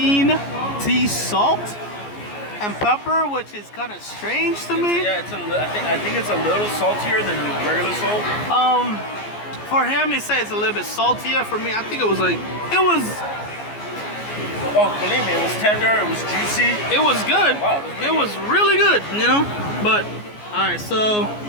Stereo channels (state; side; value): late; right; 14 ms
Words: tea salt and pepper, which is kind of strange to me. Yeah, I think it's a little saltier than regular salt. For him, he said it's a little bit saltier. For me, I think it was like, Oh, believe me, it was tender, it was juicy. it was good. Wow, It was really good, you know? But, all right, so